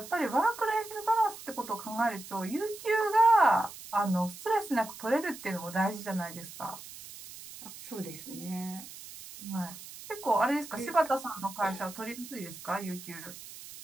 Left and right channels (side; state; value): right; noise; hiss, 14 dB below the sound